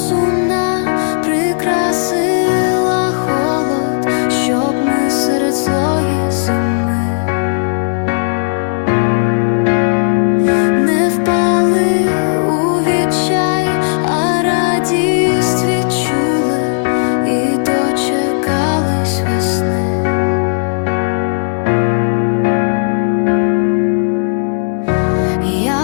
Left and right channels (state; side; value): silent; right; digital silence